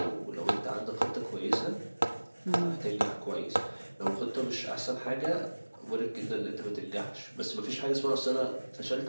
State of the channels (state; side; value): inverted; both; correlation -1.00